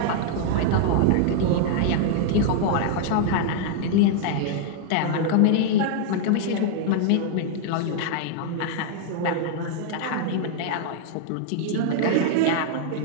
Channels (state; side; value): different; both; correlation -0.01